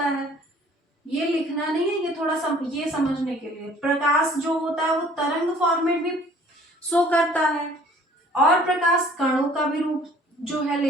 है। ये लिखना नहीं है, ये थोड़ा ये समझने के लिए। प्रकाश जो होता है वो तरंग फॉर्मेट भी शो करता है और प्रकाश कणों का भी रूप जो है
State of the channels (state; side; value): normal; both; correlation 0.54